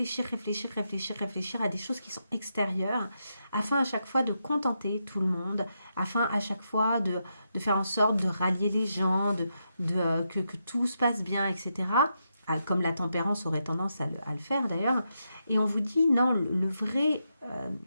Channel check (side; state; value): both; inverted; correlation -0.84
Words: réfléchir, réfléchir, réfléchir à des choses qui sont extérieures, afin à chaque fois de contenter tout le monde, afin à chaque fois de faire en sorte de rallier les gens, que tout se passe bien, etc. Ah, comme la tempérance aurait tendance à le faire d'ailleurs. Et on vous dit, non,